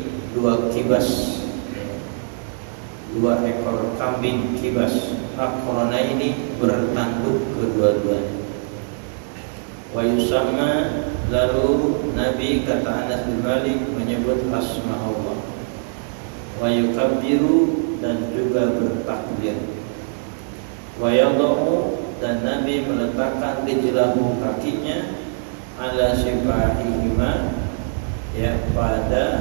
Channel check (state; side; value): silent; left; digital silence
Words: 2 kibas, 2 ekor kambing kibas, aqranaini, bertanduk kedua-duanya. Wa yusamma, lalu Nabi kata Anas bin Malik menyebut asma Allah. Wa yukabbiru, dan juga bertakbir. Wa yadhu, dan Nabi meletakkan rijlahu, kakinya, ala sifahihima, ya